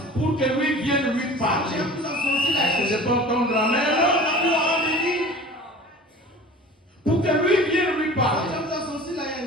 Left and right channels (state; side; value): normal; both; correlation 0.41